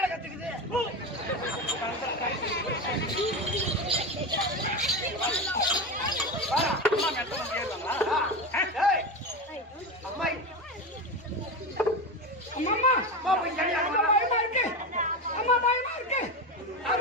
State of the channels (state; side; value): normal; both; correlation 0.20